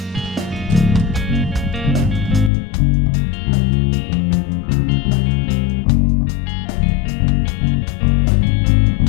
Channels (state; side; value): drops out; right; at 2.5 s